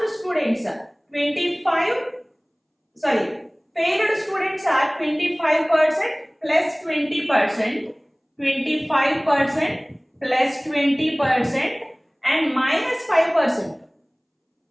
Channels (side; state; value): both; identical; correlation 1.00